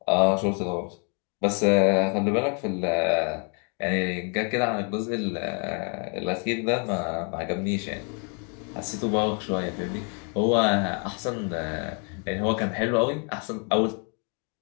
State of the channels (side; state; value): right; quieter; 38.2 dB